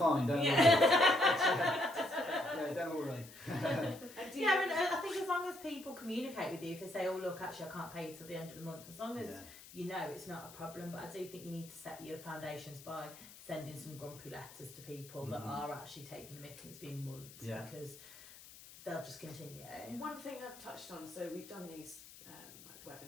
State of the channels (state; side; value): noise; left; hiss, 18 dB below the sound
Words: don't worry. Yeah, don't worry. Yeah, and I think as long as people communicate with you, if they say, oh look, actually I can't pay you till the end of the month, as long as you know it's not a problem. But I do think you need to set your foundations by sending some grumpy letters to people that are actually taking the mick and it's been months, because they'll just continue. One thing I've touched on, so we've done these like